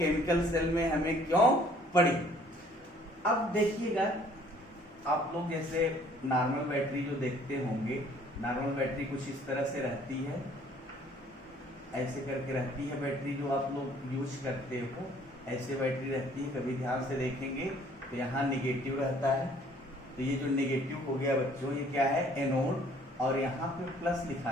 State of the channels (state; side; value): normal; both; correlation 0.58